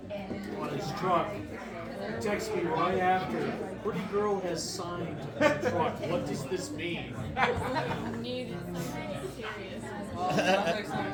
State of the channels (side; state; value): both; identical; correlation 1.00